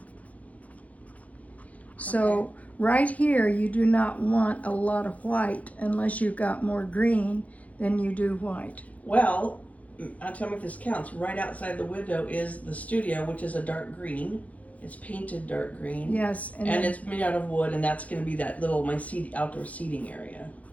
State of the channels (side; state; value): right; late; 0.069 ms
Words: So Okay. right here, you do not want a lot of white unless you've got more green than you do white. Well, tell me if this counts. Right outside the window is the studio, which is a dark green. It's painted dark green. Yes, And then- it's made out of wood, and that's going to be that little outdoor seating area.